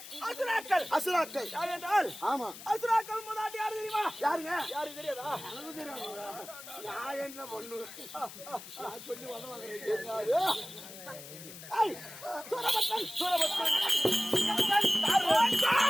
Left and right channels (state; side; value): noise; left; hiss, 14 dB below the sound